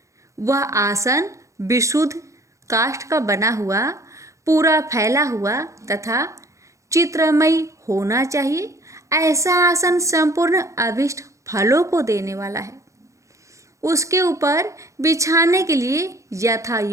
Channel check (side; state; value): left; late; 0.15 ms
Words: वह आसन विशुद्ध काष्ठ का बना हुआ, पूरा फैला हुआ तथा चित्रमयी होना चाहिए। ऐसा आसन संपूर्ण अभिष्ट फलों को देने वाला है। उसके ऊपर बिछाने के लिए यथा